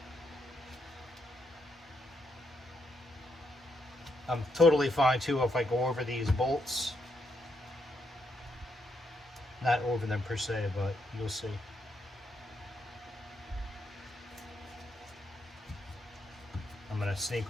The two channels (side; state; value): both; normal; correlation 0.78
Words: I'm totally fine too if I go over these bolts. Not over them per se, but you'll see. I'm going to sneak